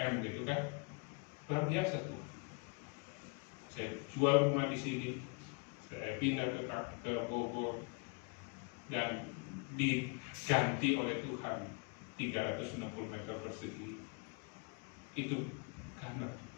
gitu kan, luar biasa tuh. Saya jual rumah di sini, saya pindah ke Bogor, dan diganti oleh Tuhan 360 meter persegi. Itu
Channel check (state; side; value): quieter; right; 33.0 dB